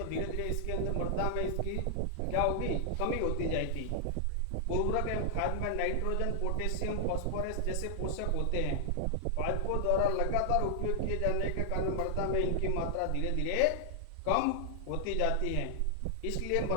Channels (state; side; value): different; both; correlation -0.01